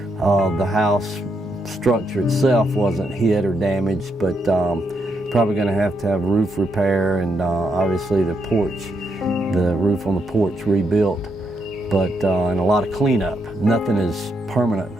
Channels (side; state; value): both; normal; correlation 0.79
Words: the house structure itself wasn't hit or damaged, but probably going to have roof repair, and obviously the roof on the porch rebuilt, but and a lot of cleanup. Nothing is permanent